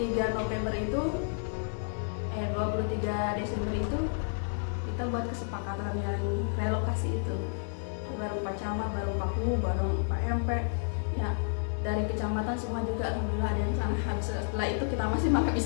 November itu 23 Desember itu kita buat kesepakatan yang relokasi itu. Baru Pak Camat, baru Pak Ku, baru Pak MP ya, dari kecamatan semua juga alhamdulillah ada yang sana. Habis setelah itu kita masih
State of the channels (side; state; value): right; silent; digital silence